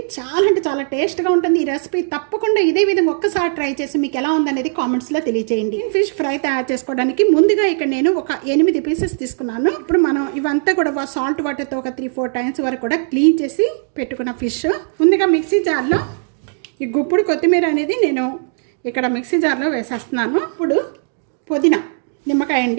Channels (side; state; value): left; silent; digital silence